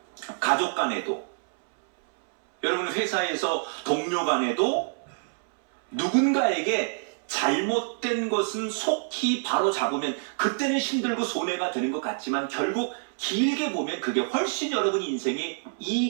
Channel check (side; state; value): left; silent; 60 dB below the other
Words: 가족 간에도, 여러분 회사에서 동료 간에도 누군가에게 잘못된 것은 속히 바로 잡으면 그때는 힘들고 손해가 되는 것 같지만 결국 길게 보면 그게 훨씬 여러분 인생에